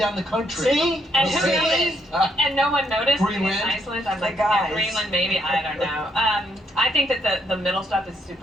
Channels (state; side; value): normal; both; correlation 0.73